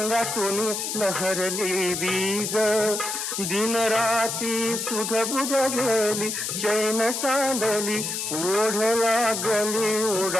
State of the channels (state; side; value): noise; left; hiss, 3 dB below the sound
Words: लहरली बीज दिन राती सुध बुध गेली चैन सांडली ओढ लागली